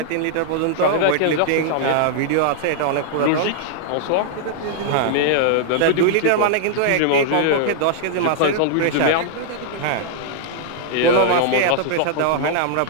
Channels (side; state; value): both; different; correlation -0.01